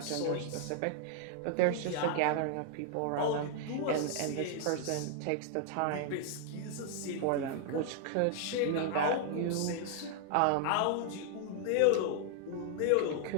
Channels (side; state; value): both; different; correlation 0.00